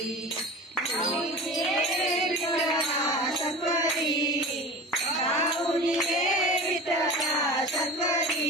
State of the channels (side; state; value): both; normal; correlation 0.35